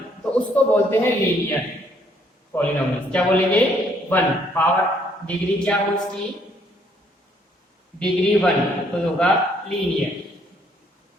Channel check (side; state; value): both; normal; correlation 0.67